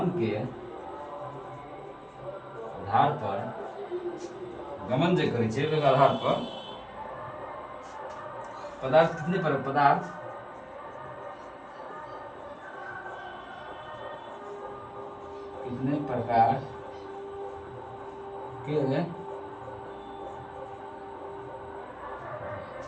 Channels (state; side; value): identical; both; correlation 1.00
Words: के आधार पर, गमन जे करै छै ओकर आधार पर पदार्थ कितने पदार्थ कितने प्रकार के,